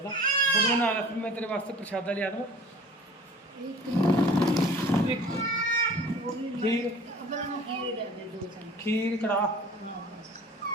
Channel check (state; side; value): normal; both; correlation 0.45